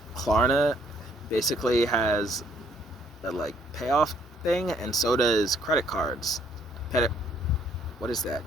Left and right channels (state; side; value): normal; both; correlation 0.65